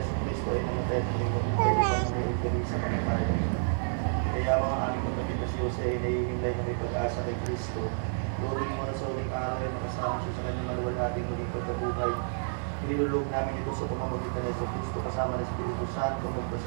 Cristo ay namatay at nagkabuhay sa nagtitig sa kamatayan. Kaya ako ang aming kapatid si Jose ay nahihimlay na may pag-asa kay Cristo. Luring mo na sa uling araw ay makasama siya sa kanyang maluwalhating muling pagkabuhay. Nilulog namin ito sa pamamagitan ni Jesus Cristo kasama ng Espiritu Santo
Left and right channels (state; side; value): silent; left; digital silence